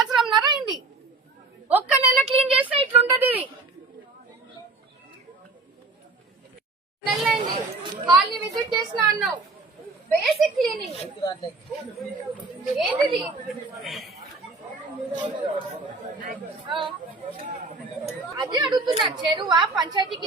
అయింది. ఒక్క నెల క్లీన్ చేస్తే ఇట్లుంటది. ఇది నెలైంది. కాలనీ విజిట్ చేసిన అన్నావు. బేసిక్ క్లీనింగ్ ఏంటిది? అదే అడుగుతున్నా. చెరువా పంచాయతీ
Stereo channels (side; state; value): left; quieter; 3.6 dB